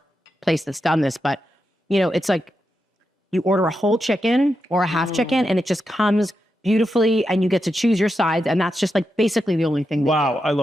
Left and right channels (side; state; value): both; normal; correlation 0.87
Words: place that's done this, but it's like you order a whole chicken or a half chicken and it just comes beautifully and you get to choose your sides. And that's just basically the only thing. Wow, I